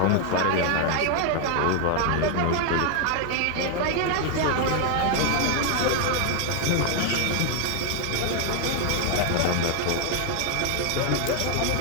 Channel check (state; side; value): different; both; correlation 0.00